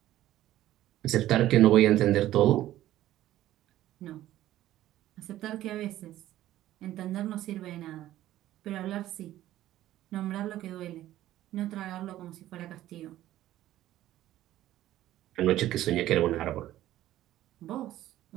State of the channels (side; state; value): left; quieter; 14.0 dB